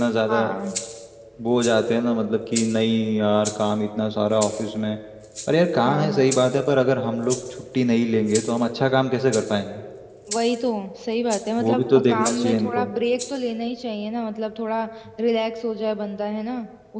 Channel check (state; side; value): identical; both; correlation 1.00